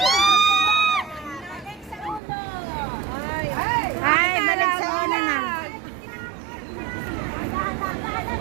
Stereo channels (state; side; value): drops out; left; at 2.2 s